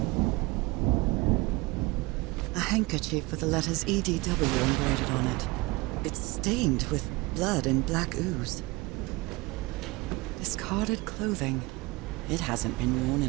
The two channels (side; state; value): left; quieter; 23.2 dB